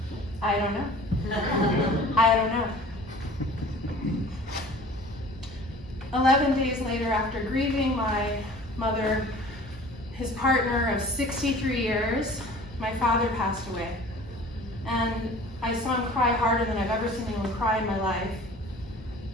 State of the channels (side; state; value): both; normal; correlation 0.46